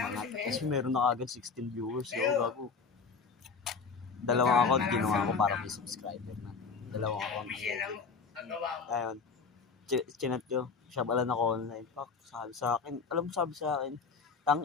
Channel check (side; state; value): right; quieter; 5.2 dB